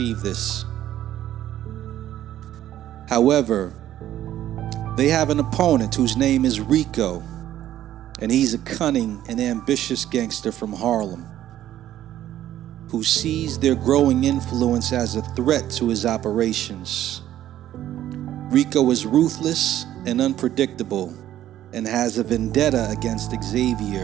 this. However, they have an opponent whose name is Rico, and he's a cunning and ambitious gangster from Harlem who sees their growing influence as a threat to his operations. Rico is ruthless and unpredictable and has a vendetta against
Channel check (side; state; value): left; quieter; 12.5 dB